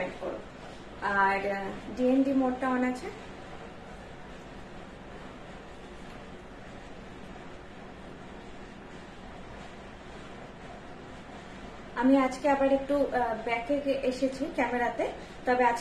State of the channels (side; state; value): both; identical; correlation 1.00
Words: করো। আর ডিএনডি মোডটা অন আছে। আমি আজকে আবার একটু ব্যাকে এসেছি ক্যামেরাতে, তবে